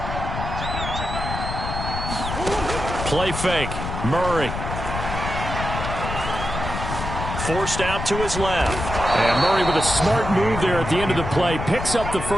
Play fake. Murray. Forced out to his left. And Murray with a smart move there at the end of the play. Picks up the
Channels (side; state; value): left; noise; rumble, 5 dB below the sound